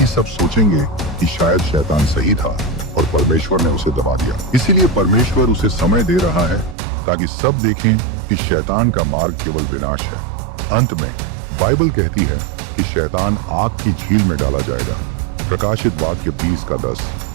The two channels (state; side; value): drops out; left; at 6.8 s